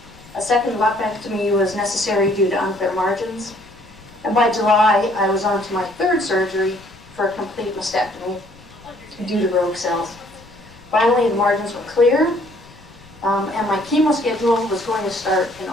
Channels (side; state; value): left; noise; rumble, 23 dB below the sound